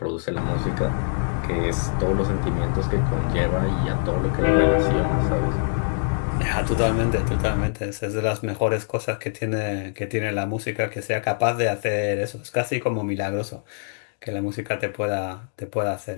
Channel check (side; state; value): right; silent; digital silence